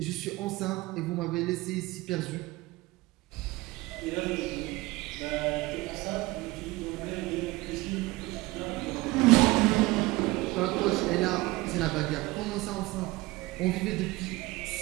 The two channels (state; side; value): quieter; left; 20.8 dB